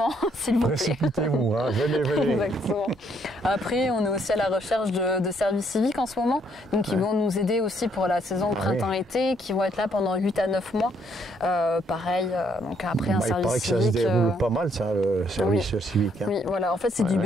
s'il vous plaît. Précipitez-vous, hein. Venez. Exactement. Après, on est aussi à la recherche de services civiques en ce moment, donc ils vont nous aider aussi pour la saison printemps-été, qui vont être là pendant 8 à 9 mois. Pareil, donc après un service civique. Il paraît que ça se déroule pas mal, ça, le service civique. Hein. Oui, voilà, en fait c'est du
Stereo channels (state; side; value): normal; both; correlation 0.69